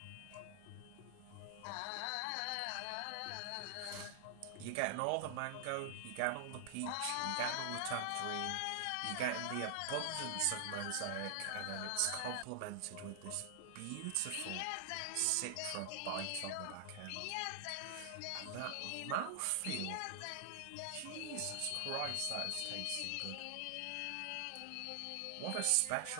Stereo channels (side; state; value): both; different; correlation 0.00